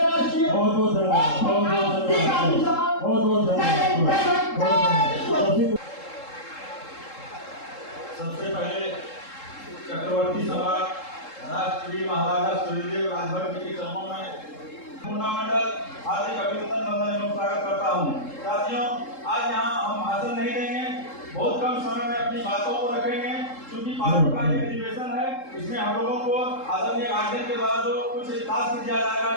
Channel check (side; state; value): right; late; 3.7 ms